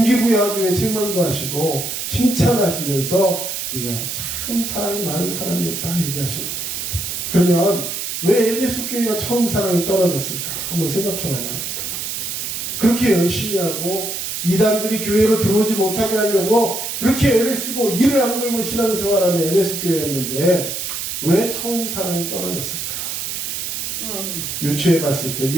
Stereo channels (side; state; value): right; noise; hiss, 4 dB below the sound